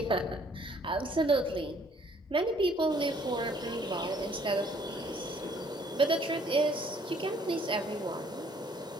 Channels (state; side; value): normal; both; correlation 0.61